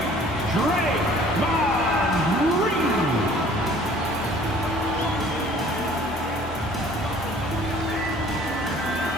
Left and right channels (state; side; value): normal; both; correlation 0.53